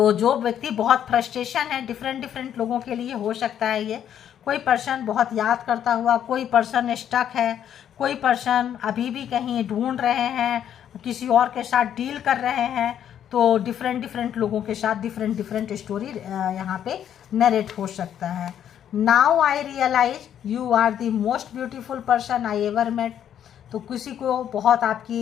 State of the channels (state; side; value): quieter; right; 9.7 dB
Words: जो व्यक्ति बहुत फ्रस्ट्रेशन है, डिफरेंट लोगों के लिए हो सकता है ये, कोई पर्सन बहुत याद करता हुआ, कोई पर्सन स्टक है, कोई पर्सन अभी भी कहीं ढूंढ रहे हैं, किसी और के साथ डील कर रहे हैं, तो डिफरेंट लोगों के साथ डिफरेंट स्टोरी यहाँ पे नरेट हो सकता है। Now I realise you are the most beautiful person I ever met. तो किसी को बहुत आपकी